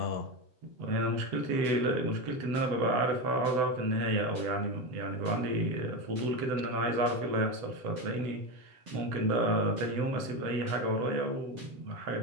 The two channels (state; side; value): late; left; 7.9 ms